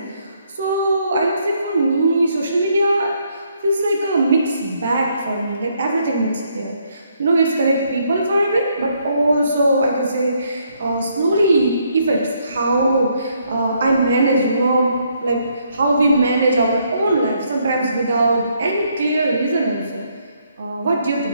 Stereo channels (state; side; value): inverted; both; correlation -0.72